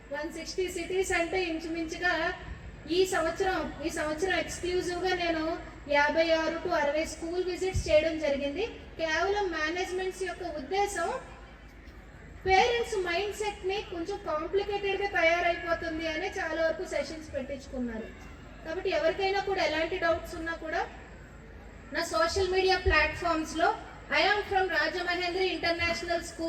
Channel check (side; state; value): both; identical; correlation 1.00